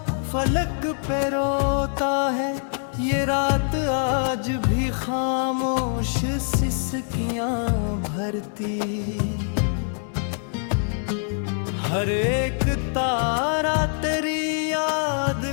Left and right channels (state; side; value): silent; right; 62 dB below the other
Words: फलक पे रोता है, ये रात आज भी खामोश सिसकियां भरती। हर एक तारा तेरी याद